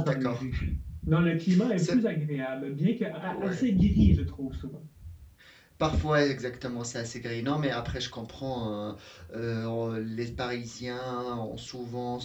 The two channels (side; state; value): both; identical; correlation 1.00